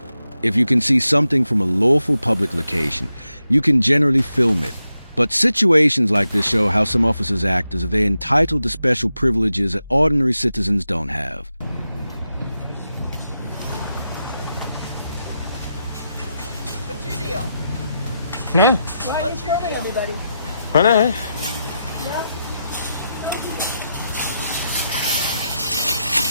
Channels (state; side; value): inverted; both; correlation -0.87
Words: If you can see something from a lawful public location, you can generally film it. But situations like this show how some officers act as if they're entitled to special privileges that ordinary citizens don't have. What's your deal? No, Why are you filming everybody? I know. Yeah.